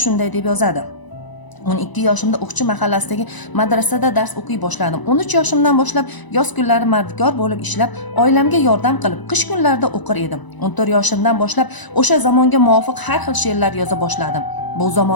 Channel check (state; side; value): late; right; 1.0 ms